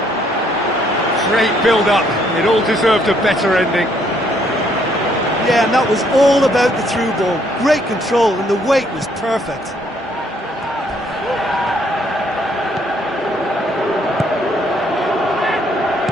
Great build-up. It all deserved a better ending. Yeah, and that was all about the through ball. Great control, and the weight was perfect.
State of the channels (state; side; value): normal; both; correlation 0.68